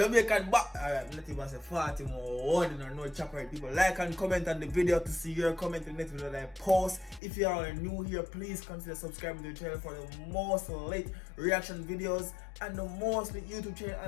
back. Alright, let me say 40 more warning or no chopper. People like and comment on the video to see your comment in the next video that I post. If you are new here, please consider subscribing to the channel for the most late reaction videos and the most YouTube channel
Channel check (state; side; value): drops out; right; at 7.2 s